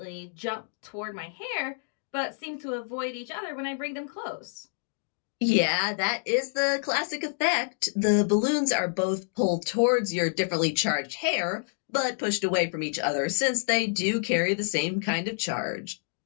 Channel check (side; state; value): right; silent; digital silence